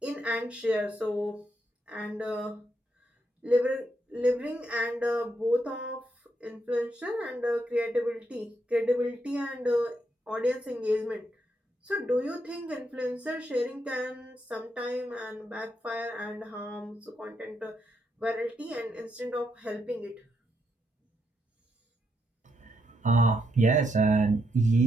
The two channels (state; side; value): normal; both; correlation 0.79